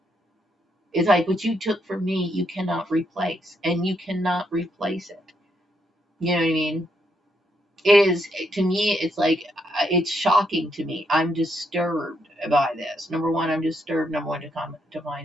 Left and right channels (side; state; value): both; normal; correlation 0.77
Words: It's like what you took from me, you cannot replace, and you cannot replace it. You know what I mean? It is, to me, it's like, it's shocking to me. I'm disturbed by this. Number one, I'm disturbed. Number one, to